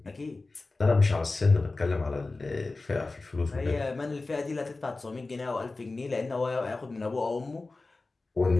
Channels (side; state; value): right; quieter; 3.4 dB